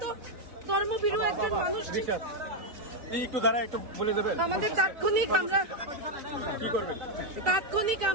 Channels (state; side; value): late; left; 4.0 ms